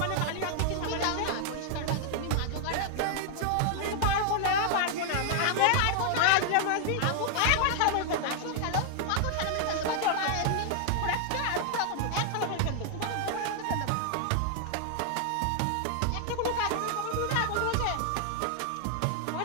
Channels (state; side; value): different; both; correlation 0.00